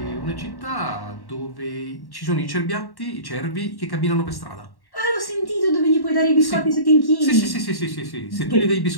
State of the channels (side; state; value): right; late; 1.1 ms